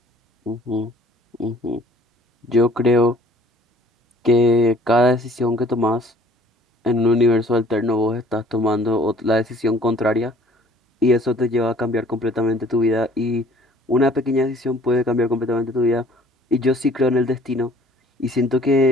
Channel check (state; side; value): normal; both; correlation 0.54